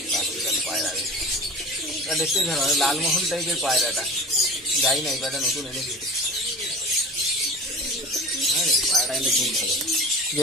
পায়রা দেখতে ভালো, লালমোহন টাইপের পায়রাটা। যাই না, এই পায়রাটা নতুন এনেছি। হ্যাঁ, পায়রাটা কিন্তু খুব ভালো।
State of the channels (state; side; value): normal; both; correlation 0.35